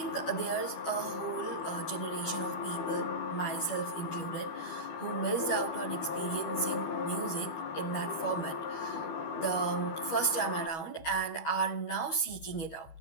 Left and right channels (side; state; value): right; late; 12 ms